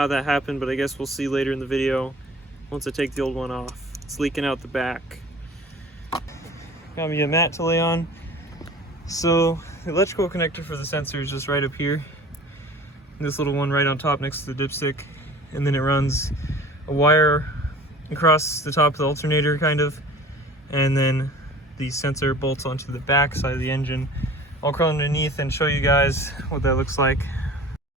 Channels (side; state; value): both; normal; correlation 0.44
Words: that happened, but I guess we'll see later in the video once I take the old one off. It's leaking out the back. Got me a mat to lay on. So the electrical connector for the sensor is just right up here. This little one right on top next to the dipstick, and then it runs a wire across the top of the alternator kind of, and then the sensor bolts onto the back side of the engine. I'll crawl underneath and show you guys what that looks like.